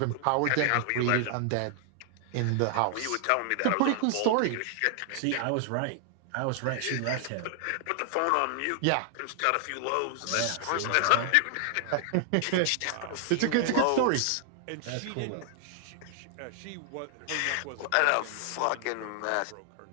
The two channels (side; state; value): both; different; correlation 0.00